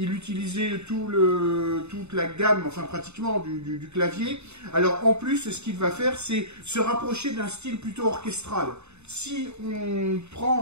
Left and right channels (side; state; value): left; late; 0.81 ms